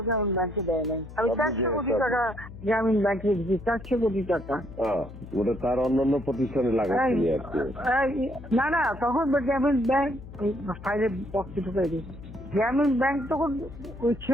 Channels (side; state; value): left; noise; hum, 15 dB below the sound